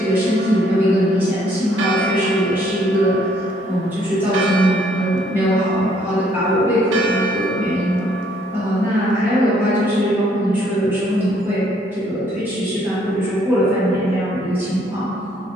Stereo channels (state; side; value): normal; both; correlation 0.66